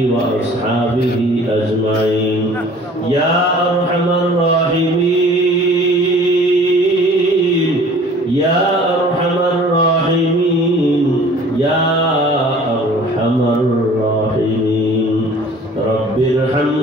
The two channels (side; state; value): both; normal; correlation 0.49